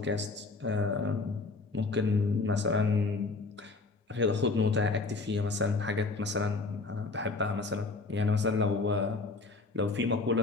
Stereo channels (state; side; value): quieter; right; 3.7 dB